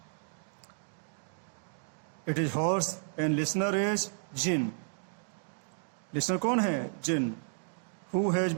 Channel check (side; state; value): left; silent; digital silence